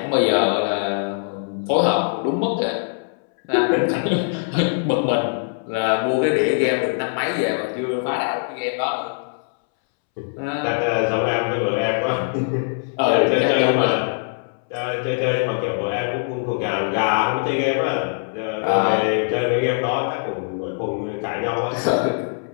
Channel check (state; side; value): silent; right; 64 dB below the other